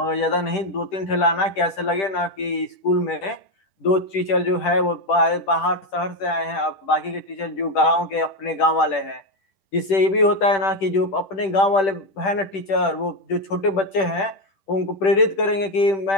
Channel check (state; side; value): late; right; 10 ms